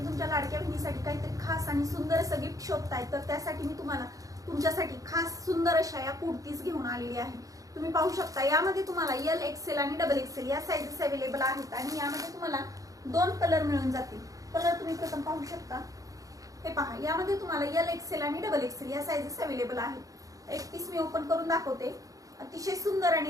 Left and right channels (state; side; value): late; left; 0.17 ms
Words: तुमच्या लाडक्या बहिणीसाठी काहीतरी खास आणि सुंदर असं गिफ्ट शोधताय, तर त्यासाठी मी तुम्हाला तुमच्यासाठी खास सुंदर अशा या कुर्तीज घेऊन आलेली आहे। तुम्ही पाहू शकता यामध्ये तुम्हाला एल एक्सेल आणि डबल एक्सेल या साइजेस अवेलेबल आहेत आणि यामध्ये तुम्हाला 2 कलर मिळून जातील। कलर तुम्ही प्रथम पाहू शकता, हे पहा, यामध्ये तुम्हाला एल एक्सेल आणि डबल एक्सेल या साइजेस अवेलेबल आहेत। एक पीस मी ओपन करून दाखवते। अतिशय सुंदर